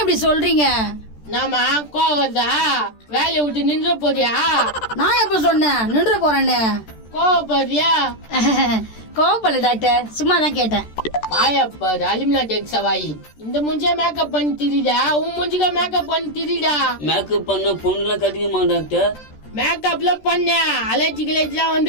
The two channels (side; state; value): right; late; 13 ms